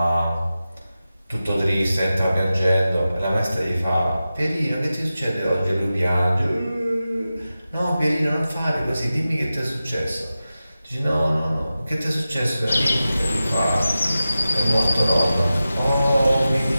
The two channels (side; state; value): both; inverted; correlation -0.94